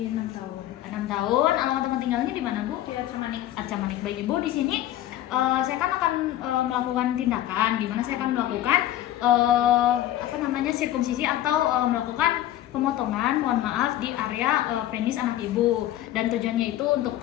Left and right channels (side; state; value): right; quieter; 13.3 dB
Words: 6 tahun. 6 tahun, alamat tempat tinggalnya di mana Bu? Di Arca Manik. Arca Manik. Baik Ibu, di sini saya kan akan melakukan tindakan, di mana saya akan melakukan sirkumsisi atau melakukan pemotongan, mohon maaf, di area penis anak ibu, dan tujuannya itu